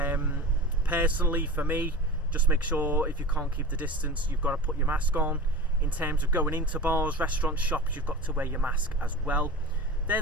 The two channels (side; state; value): both; normal; correlation 0.34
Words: Personally, for me, just make sure if you can't keep the distance, you've got to put your mask on. In terms of going into bars, restaurants, shops, you've got to wear your mask as well. They're